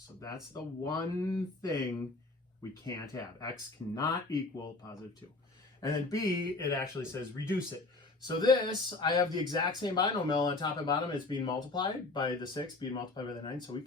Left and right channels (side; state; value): right; quieter; 3.3 dB